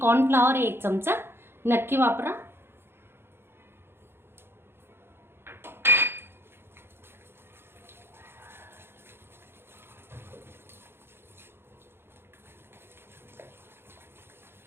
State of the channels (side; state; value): left; late; 0.11 ms